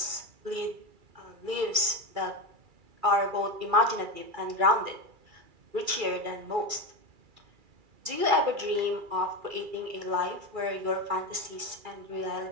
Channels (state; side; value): late; left; 2.3 ms